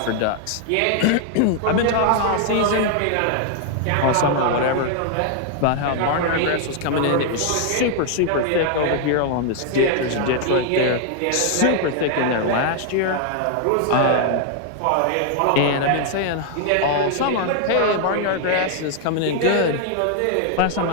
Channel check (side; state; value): both; different; correlation 0.00